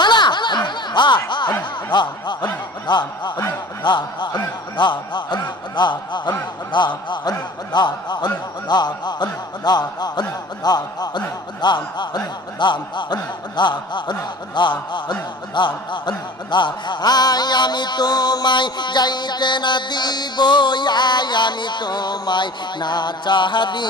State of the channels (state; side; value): normal; both; correlation 0.43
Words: আমি তোমায় যাইতে না দিব, আমি তোমায় না চাহ